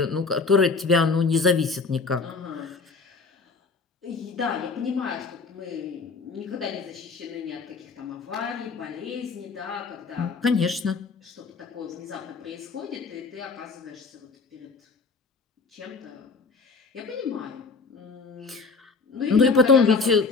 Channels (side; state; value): right; quieter; 4.4 dB